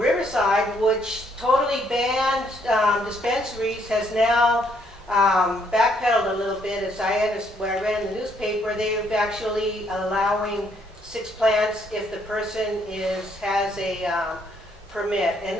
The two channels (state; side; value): normal; both; correlation 0.70